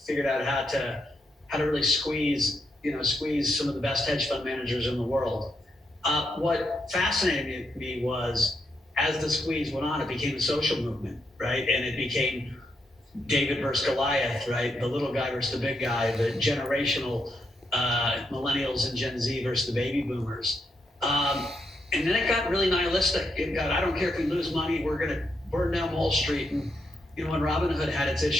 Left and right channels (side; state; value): both; normal; correlation 0.81